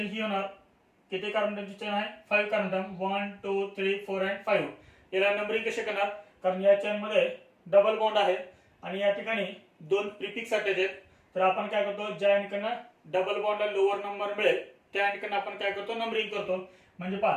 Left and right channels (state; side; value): identical; both; correlation 1.00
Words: ही होणार, किती कार्बनची चेन आहे, 5 कार्बन, 1 2 3 4 and 5। याला नंबरिंग कसे करणार, कारण या चेन मध्ये डबल बॉन्ड आहे आणि या ठिकाणी 2 प्रिफिक्स अटॅच आहेत, तर आपण काय करतो, ज्या ठिकाणी डबल बॉन्डला लोअर नंबर मिळेल त्या ठिकाणी आपण काय करतो, नंबरिंग करतो। म्हणजे